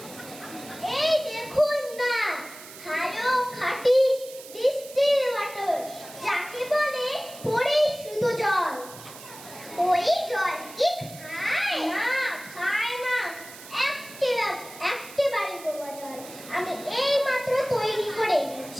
এই দেখুন না, ভালো খাঁটি ডিস্টিল ওয়াটার, যাকে বলে পরিশুদ্ধ জল। ওই জল কি খায়? না,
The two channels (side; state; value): right; noise; hiss, 16 dB below the sound